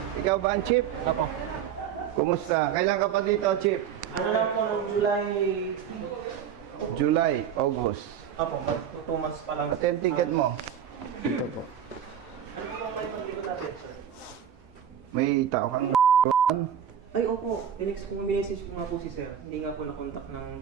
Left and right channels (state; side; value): quieter; left; 8.9 dB